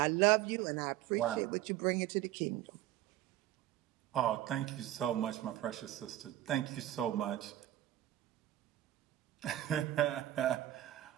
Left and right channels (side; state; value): left; quieter; 13.9 dB